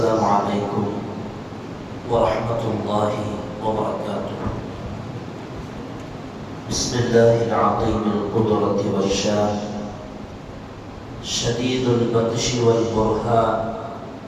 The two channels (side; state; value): both; identical; correlation 1.00